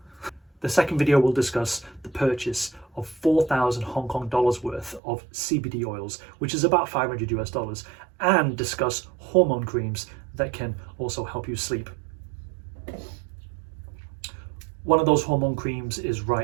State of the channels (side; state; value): left; drops out; at 5.0 s